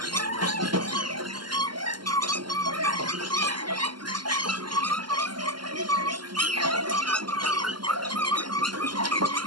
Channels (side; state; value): left; late; 0.71 ms